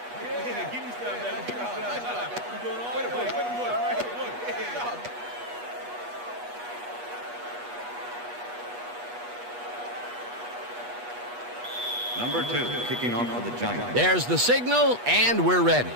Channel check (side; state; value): left; late; 8.3 ms